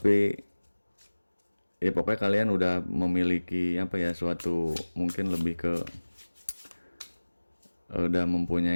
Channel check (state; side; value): inverted; both; correlation -1.00